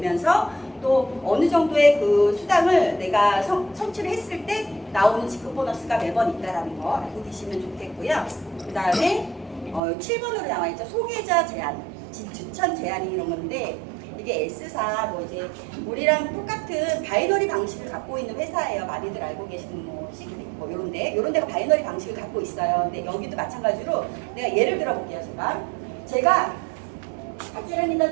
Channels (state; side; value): drops out; left; at 9.8 s